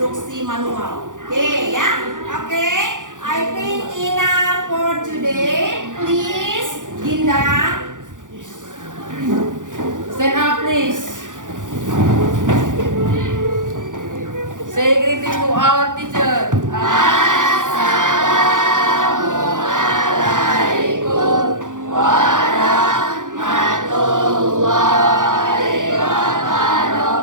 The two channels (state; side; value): late; left; 0.87 ms